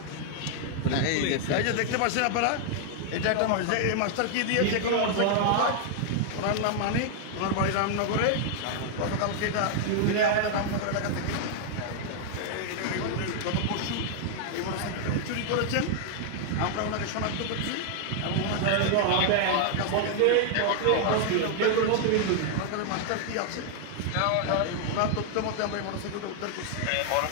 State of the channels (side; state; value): both; different; correlation 0.00